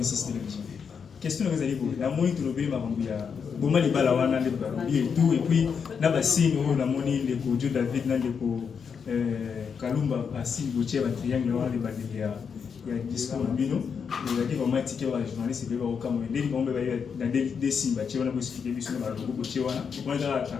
système. Question que vous allez vous. La monnaie de l'obé Marambia. Comment les balawana les barobi et tout. Et puis, n'a pas signe la monnaie de Joe David, n'a de Kalumba, à signe Gauthier, à triangle, les badélia. Il y a discours en bino. Il y a des moments qui ont journaliste et au Cameroun. Dès qu'on va dans des signes, tu vas expliquer sur le Gauthier. On est dans la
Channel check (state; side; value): quieter; right; 6.4 dB